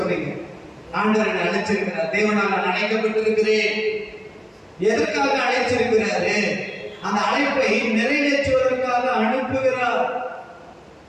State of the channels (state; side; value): identical; both; correlation 1.00